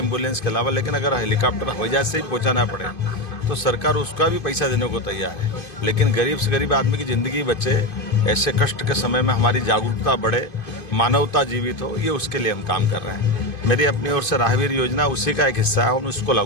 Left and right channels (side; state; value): right; late; 2.5 ms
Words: के अलावा, लेकिन अगर हेलीकॉप्टर हवाई जहाज से ही पहुंचाना पड़े तो सरकार उसका भी पैसा देने को तैयार है। लेकिन गरीब से गरीब आदमी की ज़िंदगी बचे, ऐसे कष्ट के समय में हमारी जागरूकता बढ़े, मानवता जीवित हो, ये उसके लिए हम काम कर रहे हैं। मेरी अपनी ओर से राहवीर योजना उसी का एक हिस्सा है, हम उसको